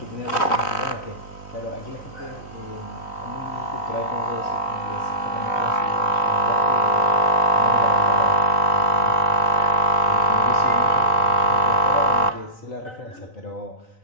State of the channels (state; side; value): late; right; 3.9 ms